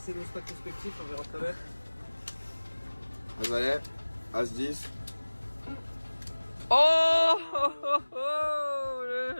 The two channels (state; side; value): inverted; both; correlation -1.00